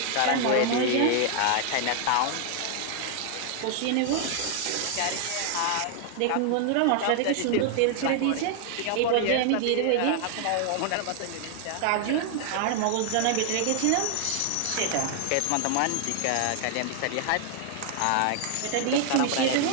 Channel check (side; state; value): both; different; correlation 0.00